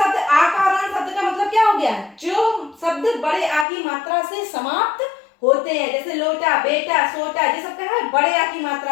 आकारांत शब्द का मतलब क्या हो गया, जो शब्द बड़े आ की मात्रा से समाप्त होते हैं, जैसे लोटा, बेटा, सोटा, ये सब क्या है बड़े आ की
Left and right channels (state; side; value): drops out; right; at 3.7 s